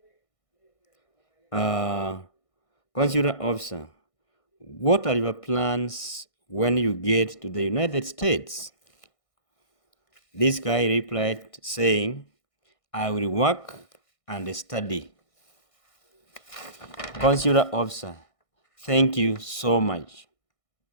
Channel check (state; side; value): late; right; 1.6 ms